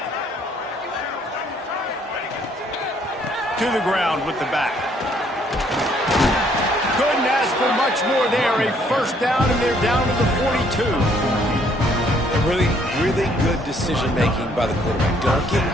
To the ground with the back. Couldn't ask for much more there. A first down, and they're down to the 42. Really, really good decision-making by the quarterback. Don't get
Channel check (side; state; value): both; normal; correlation 0.65